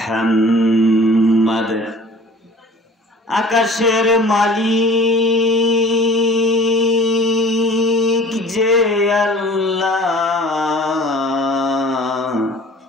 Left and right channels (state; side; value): normal; both; correlation 0.47